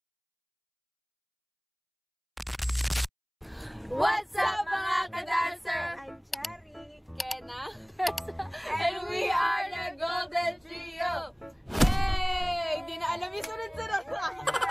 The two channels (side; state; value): both; identical; correlation 1.00